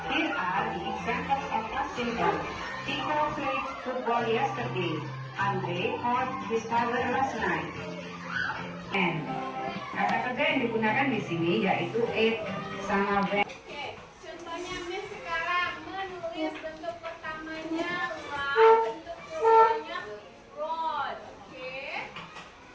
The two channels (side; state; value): both; identical; correlation 1.00